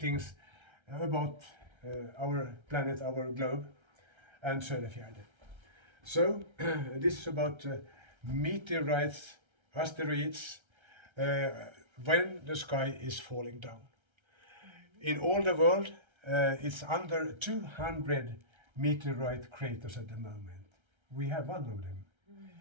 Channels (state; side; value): late; left; 1.3 ms